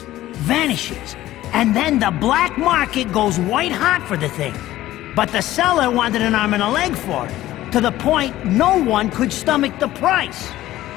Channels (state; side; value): quieter; right; 15.0 dB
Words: vanishes, and then the black market goes white hot for the thing. But the seller wanted an arm and a leg for it, to the point no one could stomach the price.